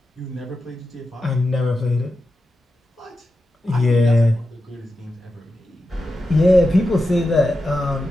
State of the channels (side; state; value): both; normal; correlation 0.90